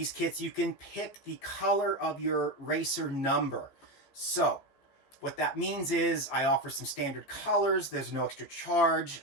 kits, you can pick the color of your racer number. So what that means is I offer some standard colors. There's no extra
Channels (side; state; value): right; late; 15 ms